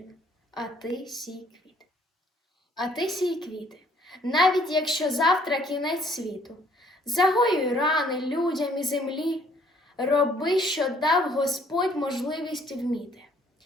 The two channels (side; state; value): both; normal; correlation 0.62